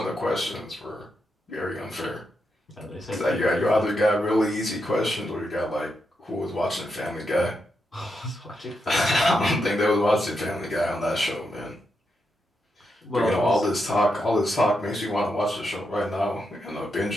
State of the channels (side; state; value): both; normal; correlation 0.84